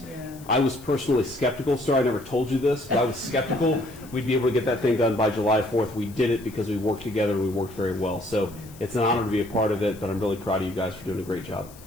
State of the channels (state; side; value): noise; left; hiss, 22 dB below the sound